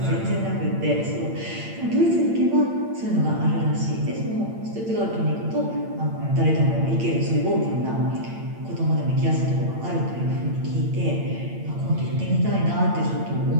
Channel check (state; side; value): late; left; 8.8 ms